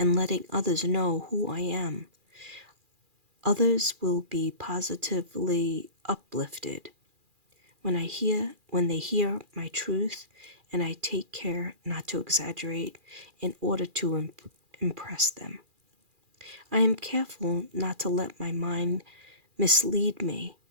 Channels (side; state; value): left; late; 2.4 ms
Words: letting others know who I am. Others will be positively uplifted when they hear my truth, and I take care not to exaggerate in order to impress them. I am careful not to let my mind mislead me,